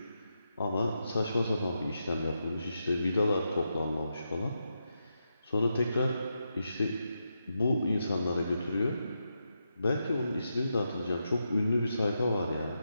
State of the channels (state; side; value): inverted; both; correlation -0.85